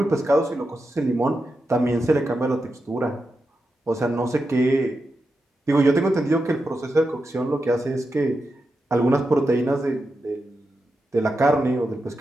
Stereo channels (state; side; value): normal; both; correlation 0.88